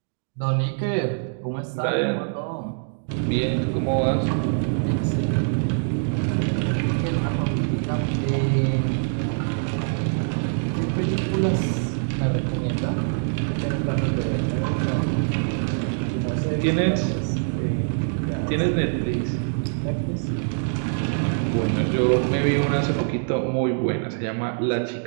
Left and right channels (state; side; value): silent; left; digital silence